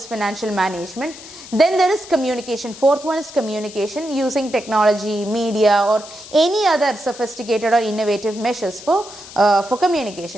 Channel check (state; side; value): noise; left; hiss, 16 dB below the sound